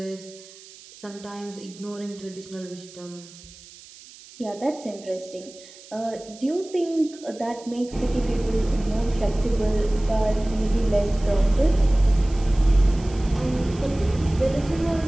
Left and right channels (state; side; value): noise; right; hiss, 20 dB below the sound